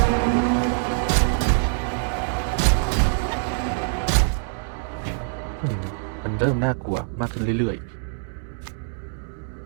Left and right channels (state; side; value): silent; left; 63 dB below the other